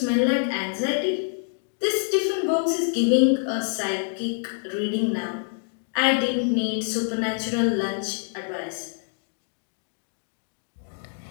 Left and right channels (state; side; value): silent; right; 61 dB below the other